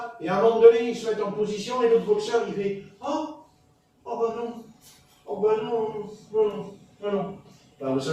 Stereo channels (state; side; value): identical; both; correlation 1.00